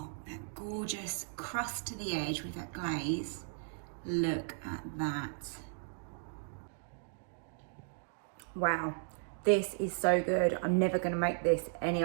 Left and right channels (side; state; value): left; silent; digital silence